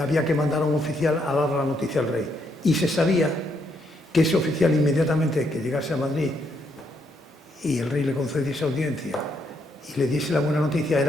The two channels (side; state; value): both; normal; correlation 0.75